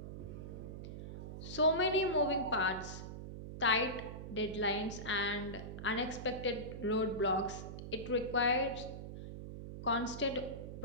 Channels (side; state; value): right; noise; hum, 9 dB below the sound